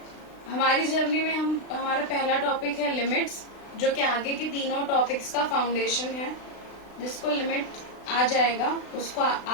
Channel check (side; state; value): right; late; 36 ms